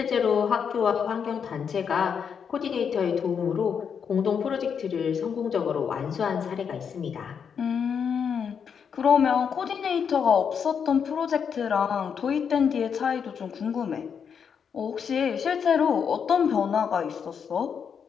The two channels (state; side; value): quieter; right; 7.0 dB